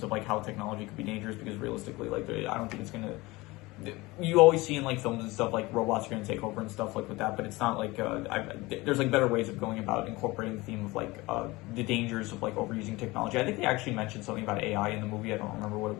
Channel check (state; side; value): quieter; right; 21.6 dB